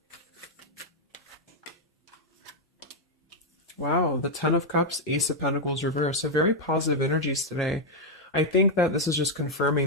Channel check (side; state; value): both; normal; correlation 0.00